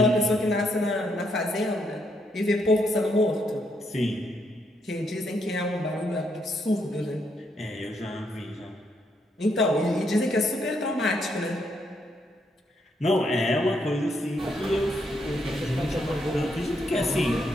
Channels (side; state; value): both; normal; correlation 0.76